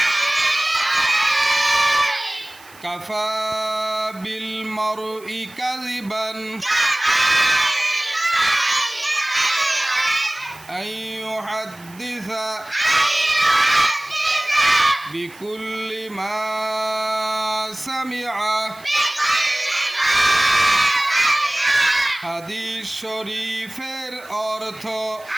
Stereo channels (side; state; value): right; noise; hiss, 23 dB below the sound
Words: কাফা বিল মারই কাযিবান আন ইউহাদ্দিসা বিকুল্লি মা সামিআ। হাদিস শরীফের অর্থ,